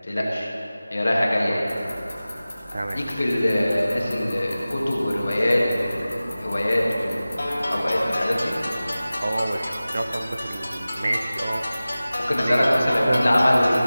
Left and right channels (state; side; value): inverted; both; correlation -0.97